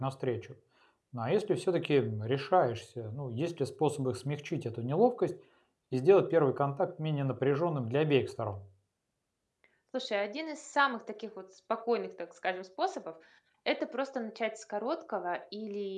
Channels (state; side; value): identical; both; correlation 1.00